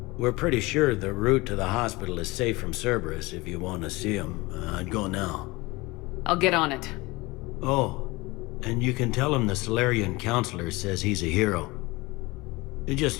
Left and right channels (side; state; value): right; quieter; 22.6 dB